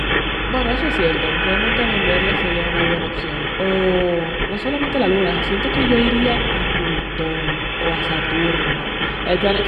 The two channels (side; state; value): both; identical; correlation 1.00